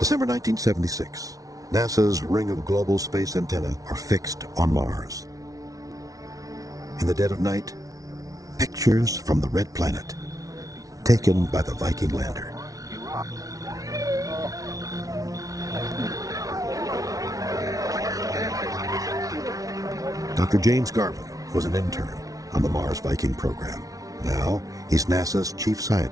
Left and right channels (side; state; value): left; late; 0.17 ms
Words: 1976, NASA's ring of global space antennae are fixed on Mars. In the dead of night, pictures from the red planet, taken by the Viking lander. Dr. James Garvin was an intern on the Mars Viking program. Now, he's NASA's chief